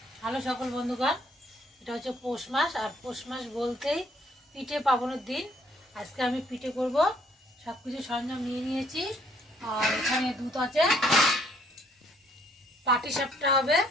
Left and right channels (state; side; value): normal; both; correlation 0.65